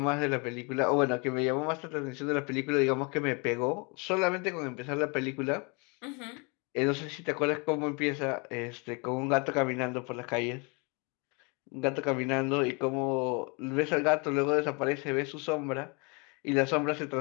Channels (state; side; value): quieter; right; 31.5 dB